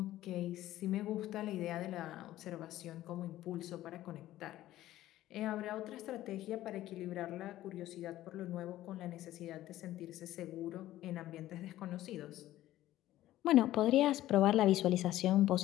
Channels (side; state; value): right; quieter; 14.5 dB